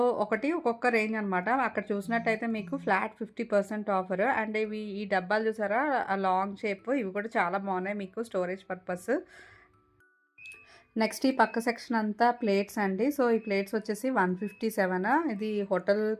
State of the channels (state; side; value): identical; both; correlation 1.00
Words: ఒక్కొక్క రేంజ్ అనమాట. అక్కడ చూసినట్టయితే మీకు ఫ్లాట్ 50% ఆఫర్. అండ్ ఇవి ఈ డబ్బాలు చూసారా లాంగ్ షేప్, ఇవి కూడా చాలా బాగున్నాయి మీకు స్టోరేజ్ పర్పస్. నెక్స్ట్ ఈ పక్క సెక్షన్ అంతా ప్లేట్స్ అండి. సో ఈ ప్లేట్స్ వచ్చేసి 157. ఇది హోటల్